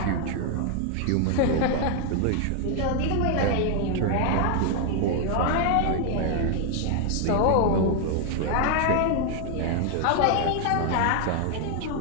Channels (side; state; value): both; different; correlation 0.00